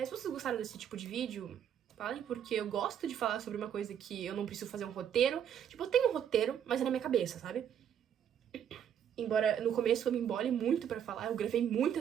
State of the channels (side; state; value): left; quieter; 9.1 dB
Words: vocês gostaram desse tipo de vídeo, falem, porque eu gosto de falar sobre uma coisa que eu não preciso fazer um roteiro. Tipo, eu tenho um roteiro, mas é na minha cabeça, sabe? Embora no começo eu me embole muito pra falar, eu gravei